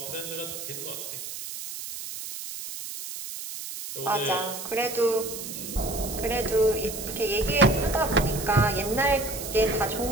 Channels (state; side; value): noise; right; hiss, 8 dB below the sound